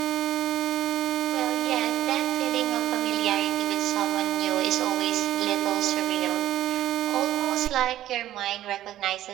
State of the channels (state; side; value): quieter; left; 13.4 dB